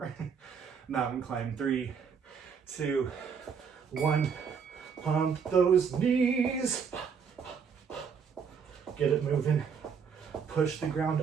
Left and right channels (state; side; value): quieter; left; 6.4 dB